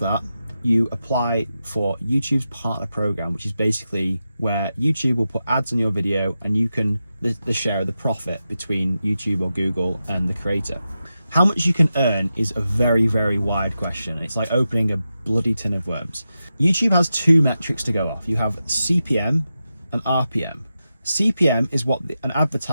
you apply for YouTube's partner program, which is basically where YouTube will put ads on your video and you can the share of the profit between YouTube or Google and the creator. How much you can earn is a very, very wide question. It's like opening a bloody tin of worms. YouTube has two metrics to go off. You have CPM and RPM. CPM is what an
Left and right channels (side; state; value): both; inverted; correlation -0.90